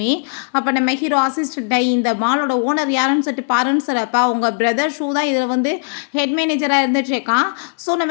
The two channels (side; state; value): right; silent; digital silence